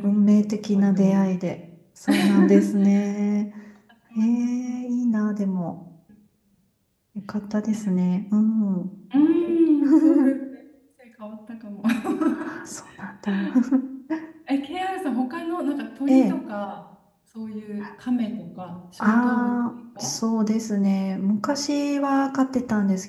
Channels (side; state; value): both; identical; correlation 1.00